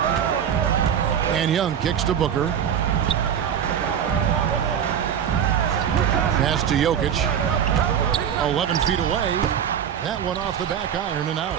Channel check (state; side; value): quieter; left; 8.7 dB